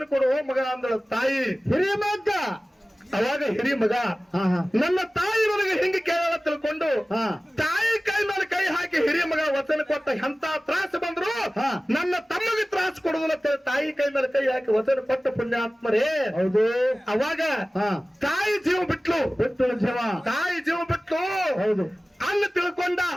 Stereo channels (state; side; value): normal; both; correlation 0.97